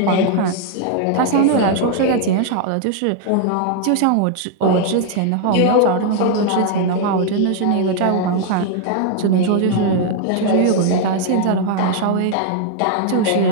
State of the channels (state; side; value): different; both; correlation 0.00